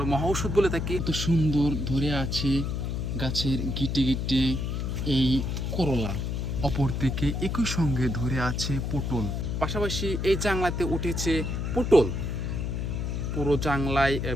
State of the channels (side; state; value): left; noise; hum, 2 dB below the sound